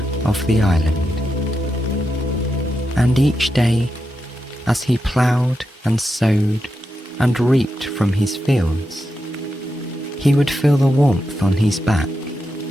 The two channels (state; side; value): normal; both; correlation 0.87